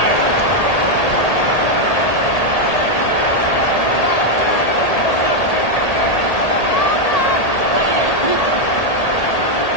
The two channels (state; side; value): late; right; 1.8 ms